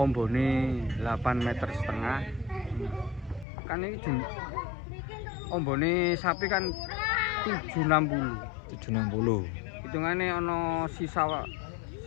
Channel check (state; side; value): drops out; right; at 3.5 s